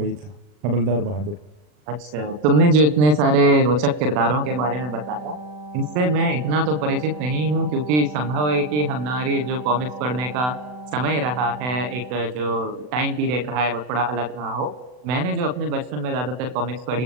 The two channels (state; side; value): late; left; 40 ms